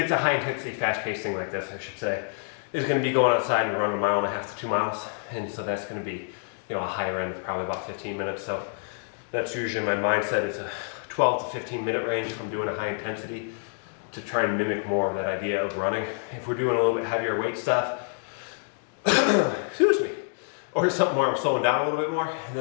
a high intensity, fast paced thing like this, I should say, is going to be going outside and running 1.5 miles to 2 miles. And so that's going to be, you know, a higher end of probably about 15 minutes. So that's usually my mindset, is a 12 to 15 minute range if I'm doing a high intensity, to try and mimic more of that idea of running. If we're doing a little bit heavier weight stuff, excuse me, or something where I'm slowing down a little bit more, and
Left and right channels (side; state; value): right; silent; 58 dB below the other